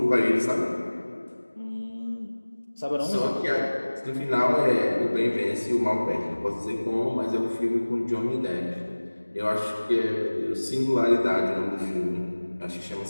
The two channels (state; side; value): inverted; both; correlation -1.00